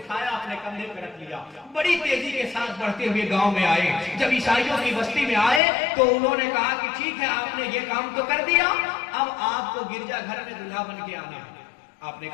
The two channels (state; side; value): drops out; right; at 5.6 s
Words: अपने कंधे पर रख लिया। बड़ी तेजी के साथ बढ़ते हुए गांव में आए। जब ईसाइयों की बस्ती में आए तो उन्होंने कहा कि ठीक है आपने ये काम तो कर दिया, अब आपको गिरजाघर में दूल्हा बन के आना है। आपने